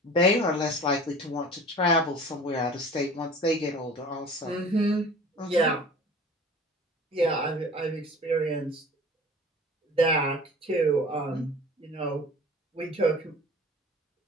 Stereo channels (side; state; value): both; normal; correlation 0.43